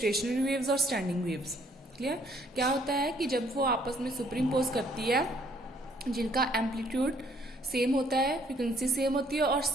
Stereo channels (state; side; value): normal; both; correlation 0.64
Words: waves और standing waves. Clear? क्या होता है कि जब वो आपस में superimpose करती है, जिनका एम्पलीट्यूड सेम होता है, फ्रीक्वेंसी सेम होती है और